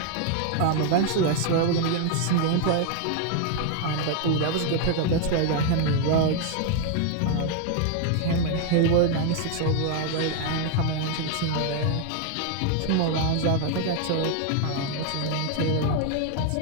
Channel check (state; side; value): different; both; correlation 0.00